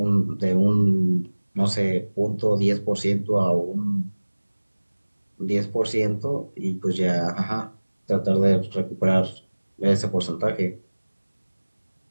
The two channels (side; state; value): both; inverted; correlation -1.00